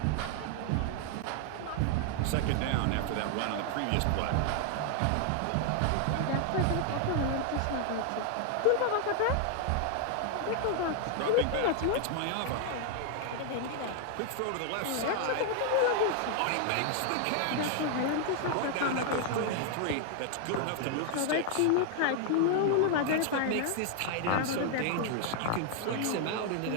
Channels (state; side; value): different; both; correlation 0.00